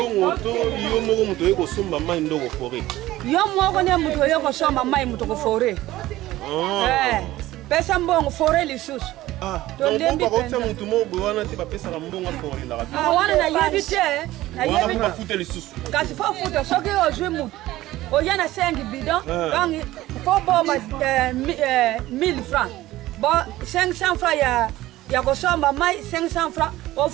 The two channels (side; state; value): left; quieter; 16.3 dB